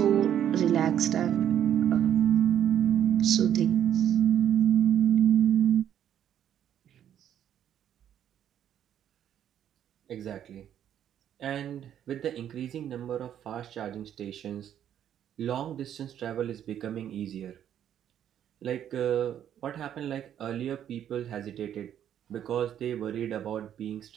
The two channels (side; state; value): left; quieter; 10.1 dB